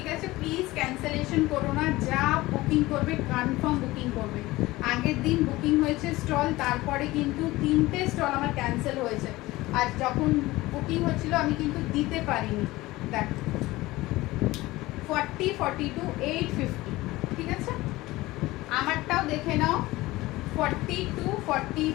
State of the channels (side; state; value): right; quieter; 19.1 dB